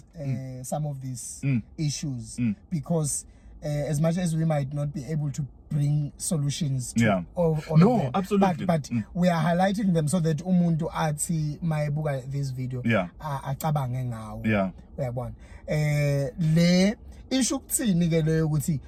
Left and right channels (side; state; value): both; identical; correlation 1.00